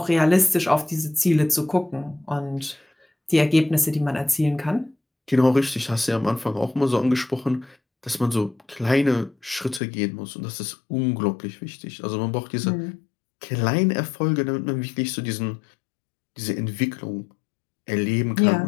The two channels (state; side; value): drops out; right; at 9.8 s